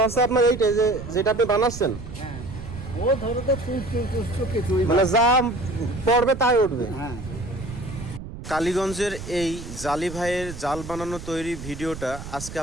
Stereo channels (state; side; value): noise; right; rumble, 11 dB below the sound